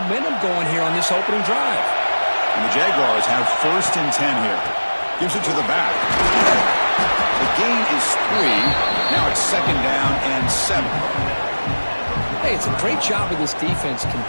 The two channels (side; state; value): both; inverted; correlation -1.00